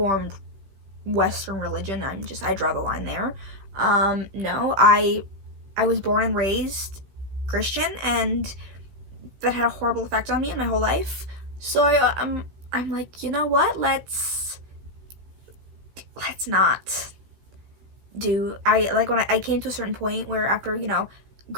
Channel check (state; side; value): late; left; 15 ms